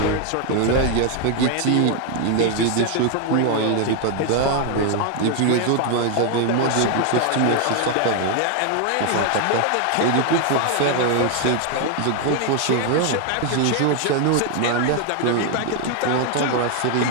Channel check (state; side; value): different; both; correlation 0.00